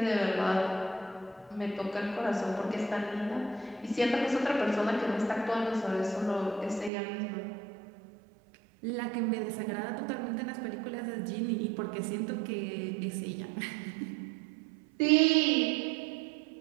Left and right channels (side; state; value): left; drops out; at 6.9 s